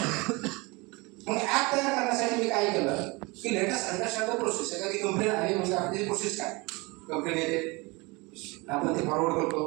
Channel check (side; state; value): left; quieter; 25.5 dB